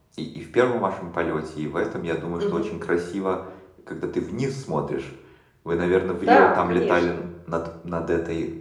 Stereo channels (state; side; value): identical; both; correlation 1.00